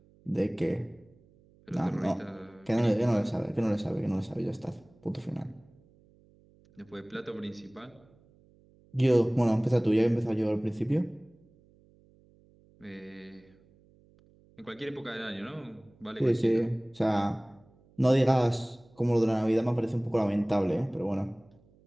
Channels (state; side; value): noise; right; hum, 30 dB below the sound